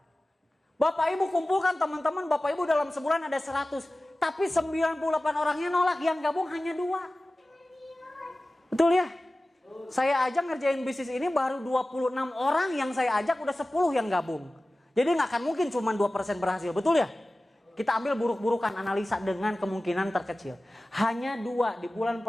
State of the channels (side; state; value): both; normal; correlation 0.97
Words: Bapak Ibu kumpulkan teman-teman Bapak Ibu dalam sebulan ada 100, tapi 98 orangnya nolak, yang gabung hanya 2. Betul ya? Saya aja ngerjain bisnis ini baru 26 orang yang saya ajak, udah 10 yang gabung. Jadi nggak akan mungkin cuma 2% berhasil, betul ya? Kita ambil buruk-burukan, analisa dengan kemungkinan terkecil. Hanya 2, di bulan